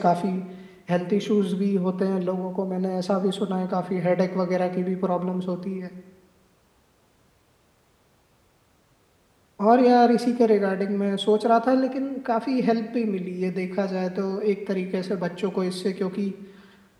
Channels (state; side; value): identical; both; correlation 1.00